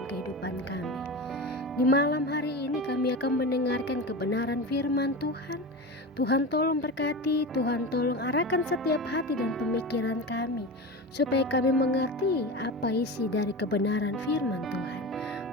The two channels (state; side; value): normal; both; correlation 0.26